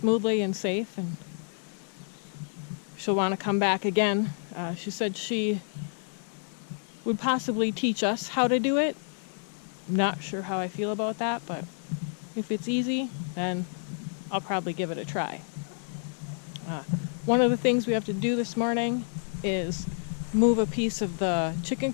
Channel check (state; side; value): silent; right; digital silence